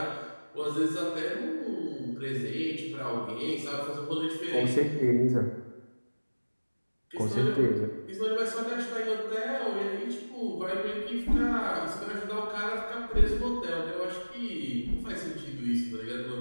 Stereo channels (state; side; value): inverted; both; correlation -1.00